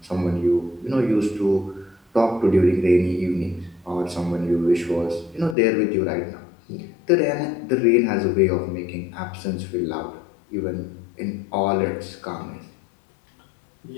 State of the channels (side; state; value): right; drops out; at 5.6 s